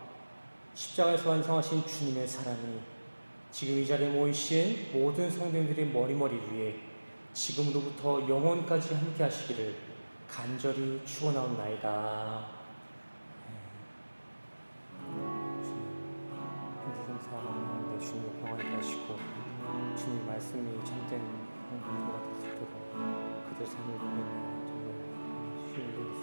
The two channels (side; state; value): both; inverted; correlation -1.00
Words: 십자가에서 완성하신 주님의 사랑이 지금 이 자리에 모이신 모든 성도님들의 머리머리 위에 지금으로부터 영원까지 함께 하시기를 간절히 축원하옵나이다. 사랑하는데 주님의 평안을 하시고 주님의 말씀이 참된 행동가 될 수 있도록 그들 삶을 보내며 정말 신뢰할